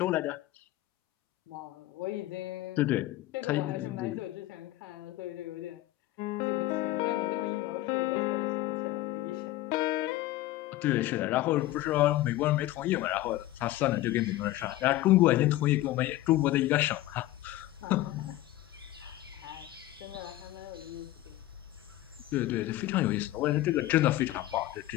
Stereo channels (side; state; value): right; quieter; 16.0 dB